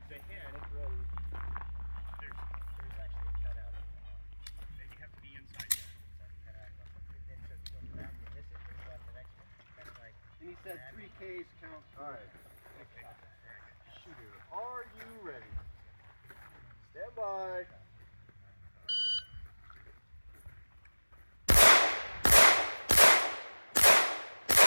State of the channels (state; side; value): inverted; both; correlation -1.00